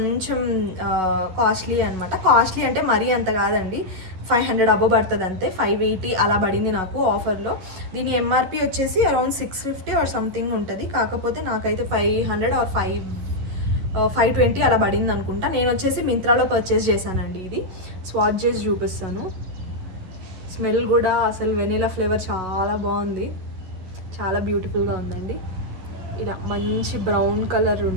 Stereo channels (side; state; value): left; late; 11 ms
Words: కాస్ట్లీ అనమాట. కాస్ట్లీ అంటే మరీ అంత కాదండి, 500 అబో పడుతుంది అంతే. 580 అలా పడింది నాకు ఆఫర్లో. దీని ఎంఆర్పి వచ్చేసి అరౌండ్ 650 ఆర్ సంథింగ్ ఉంటుంది. కాకపోతే నాకైతే 500 ఆర్ 520 అలా పడింది అనుకుంటా. నేను వచ్చేసి మింత్రాలో పర్చేస్ చేశానండి. ఇది స్వాచ్ చేసి చూపిస్తాను. స్మెల్ కూడా అసలు వెనీలా ఫ్లేవర్ చాలా బాగుంది, చాలా బ్యూటిఫుల్గా ఉందండి. ఇలా మంచి బ్రౌన్ కలర్